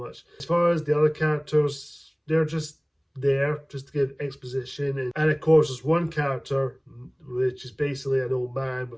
As far as the other characters, they're just there just to give exposition, and of course there's one character which is basically an old man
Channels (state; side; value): identical; both; correlation 1.00